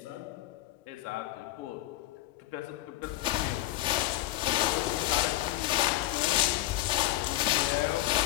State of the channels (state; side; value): quieter; right; 16.3 dB